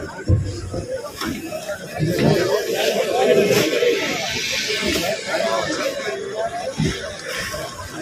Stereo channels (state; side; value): identical; both; correlation 1.00